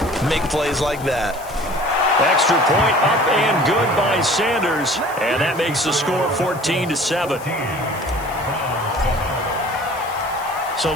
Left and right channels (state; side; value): noise; left; hiss, 19 dB below the sound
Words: make plays like that. Extra point up and good by Sanders. And that makes the score 14-7. So